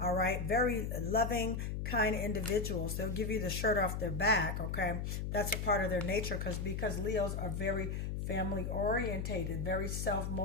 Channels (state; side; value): noise; left; hum, 2 dB below the sound